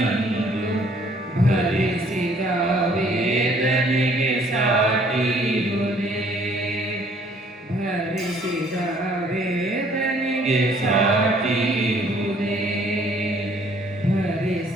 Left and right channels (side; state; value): both; normal; correlation 0.60